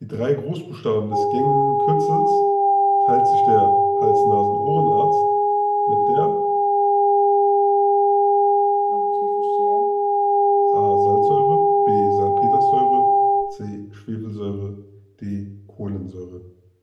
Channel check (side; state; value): both; identical; correlation 1.00